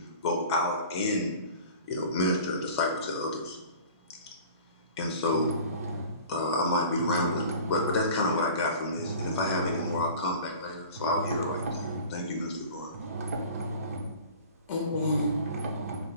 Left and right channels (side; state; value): both; inverted; correlation -0.42